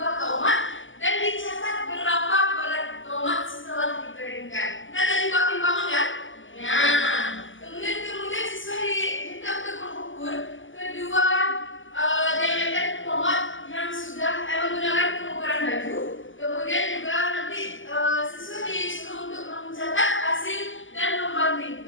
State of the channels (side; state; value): right; late; 0.57 ms